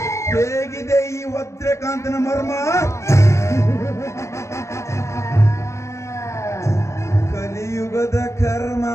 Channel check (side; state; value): right; late; 0.14 ms